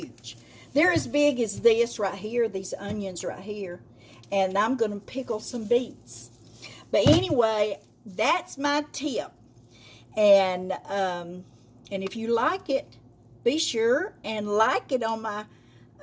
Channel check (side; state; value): both; identical; correlation 1.00